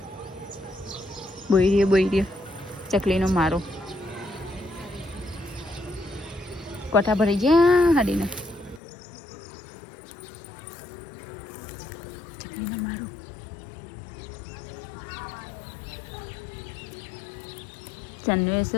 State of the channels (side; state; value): right; drops out; at 8.8 s